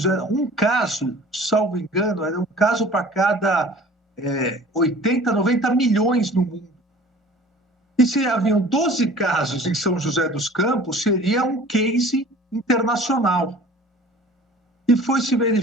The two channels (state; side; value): normal; both; correlation 0.46